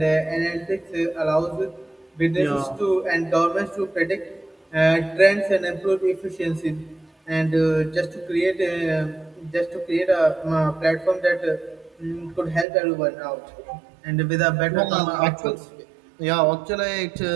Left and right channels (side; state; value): left; drops out; at 12.7 s